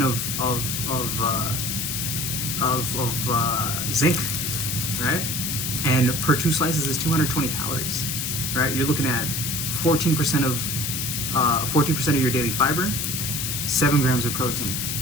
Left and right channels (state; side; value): noise; left; hiss, 1 dB below the sound